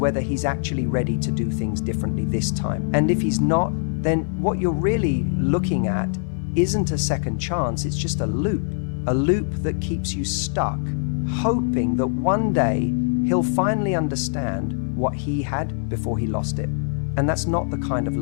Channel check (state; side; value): silent; right; digital silence